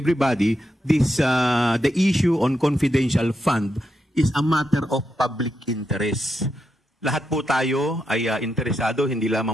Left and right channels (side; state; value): both; normal; correlation 0.84